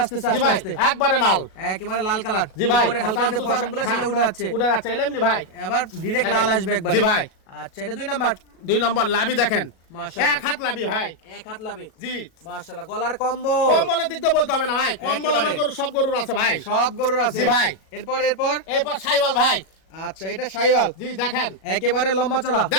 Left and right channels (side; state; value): right; late; 37 ms